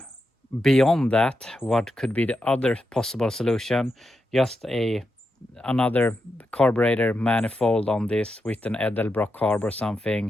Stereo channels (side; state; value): both; normal; correlation 0.86